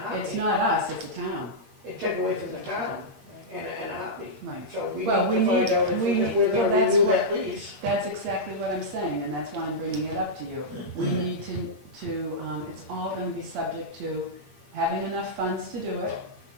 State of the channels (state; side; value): late; left; 8.6 ms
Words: heartbeat. not us, it's the town. It take away from the town in a heartbeat. Right. So we need Well, to we find need- out if we if we're need- well, gonna that's renew what- that lease. That's exactly what I'm saying, and that's why I'm bringing it up to you. We need it's all gonna be subject to having enough funds to do it,